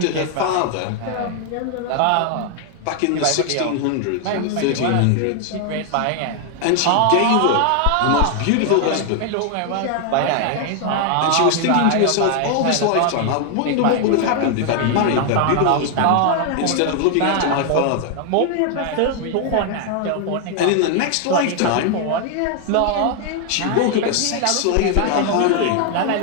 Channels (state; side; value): different; both; correlation 0.00